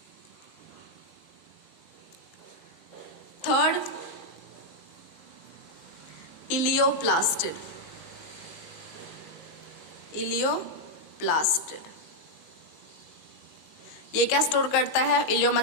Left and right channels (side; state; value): right; late; 19 ms